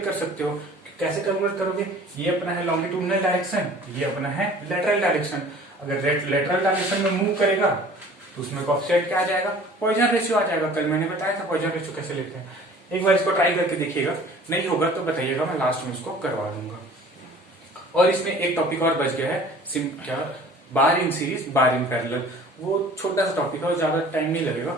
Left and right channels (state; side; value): normal; both; correlation 0.48